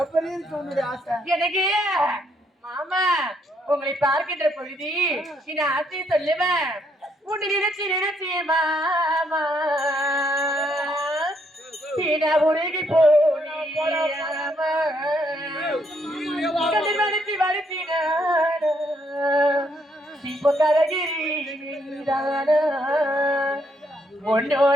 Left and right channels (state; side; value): normal; both; correlation 0.73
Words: எனக்கு மாமா உங்களை பார்க்கின்ற பொழுது இந்த ஆசையை சொல்லுவேன். உன்னை நினைச்சு நினைச்சு மாமா உருகி போனாமா மறுத்தி மறுத்தின இப்போ கரகிரி